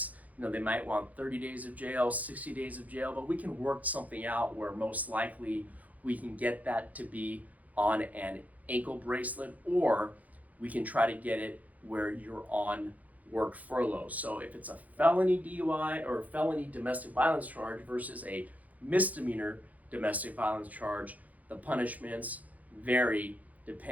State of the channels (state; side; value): late; left; 0.076 ms